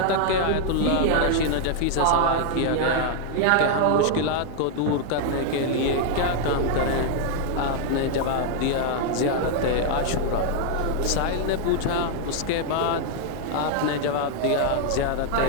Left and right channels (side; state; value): both; different; correlation 0.00